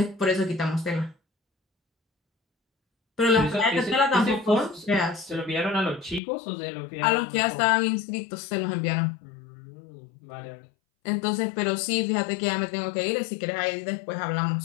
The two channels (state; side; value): drops out; right; at 6.2 s